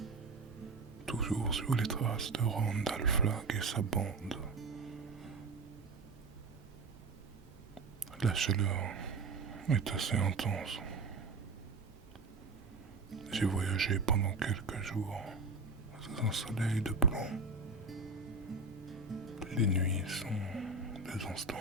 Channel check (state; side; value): quieter; left; 3.7 dB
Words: toujours sur les traces de Randall Flagg et sa bande. La chaleur est assez intense. J'ai voyagé pendant quelques jours sous un soleil de plomb. Les nuits sont des instants